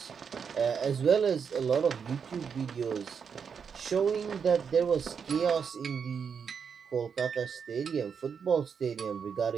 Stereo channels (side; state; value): left; quieter; 6.6 dB